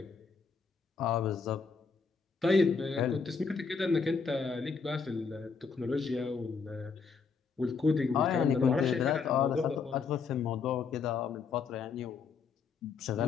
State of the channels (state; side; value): quieter; right; 5.3 dB